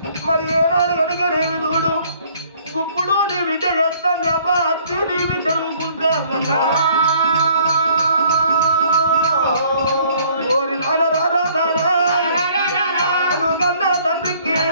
మరి ఏనాడు కనుకనేమి చూడు ఇప్పుడు నీ బిడ్డ ఎడతాను అబ్బా అత్తి నీ బిడ్డ ఊకుంటా ఓరి నారా కన్నా తండ్రికి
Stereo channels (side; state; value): both; inverted; correlation -0.60